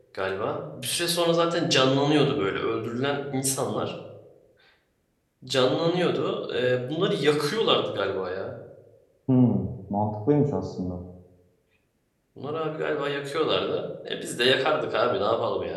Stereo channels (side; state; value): both; identical; correlation 1.00